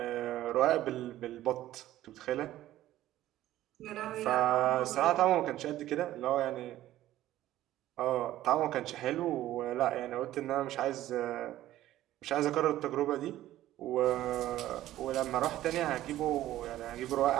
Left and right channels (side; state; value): left; quieter; 14.2 dB